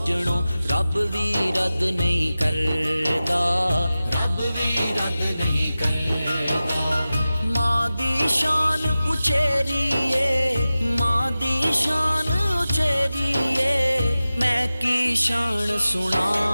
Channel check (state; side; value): inverted; both; correlation -0.95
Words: रब भी रद्द नहीं करदा, रब भी रद्द नहीं करदा। मां दी शान उचेरिए, मां दी शान उचेरिए, मैं की शान